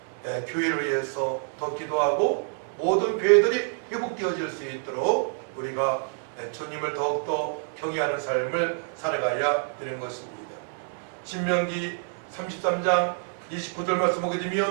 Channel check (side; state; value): left; silent; 60 dB below the other